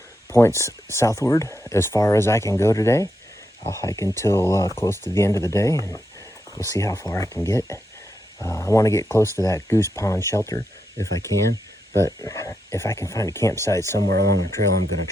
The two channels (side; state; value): both; normal; correlation 0.84